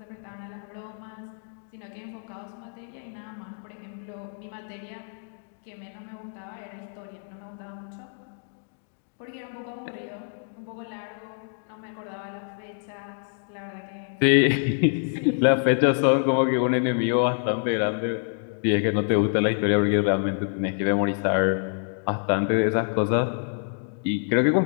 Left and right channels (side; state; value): right; silent; digital silence